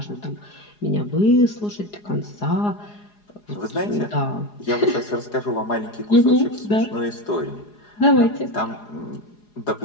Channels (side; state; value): right; late; 4.8 ms